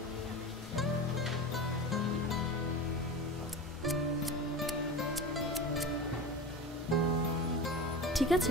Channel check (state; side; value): normal; both; correlation 0.29